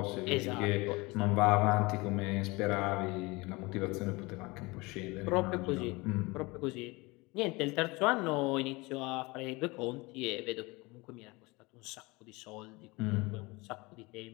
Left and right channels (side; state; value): right; quieter; 24.3 dB